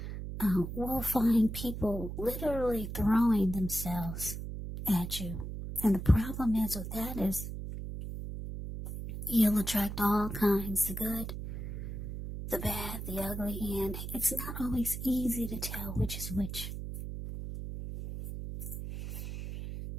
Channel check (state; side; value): noise; right; hum, 6 dB below the sound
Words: will find people literally throwing themselves at you. And the problem is with that is you'll attract all kinds, the good, the bad, the ugly, and it's not always easy to tell which is which.